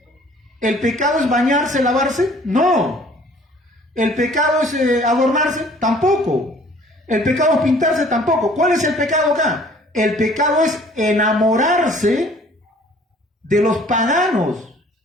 ¿El pecado es bañarse, lavarse? No. ¿El pecado es adornarse? Tampoco. ¿El pecado es pintarse? Tampoco. ¿Cuál es el pecado acá? El pecado es enamorarse de los paganos,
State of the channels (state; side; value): normal; both; correlation 0.54